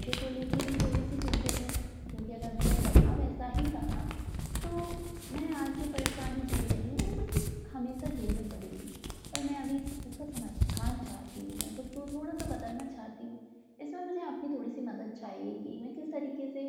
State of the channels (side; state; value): both; identical; correlation 1.00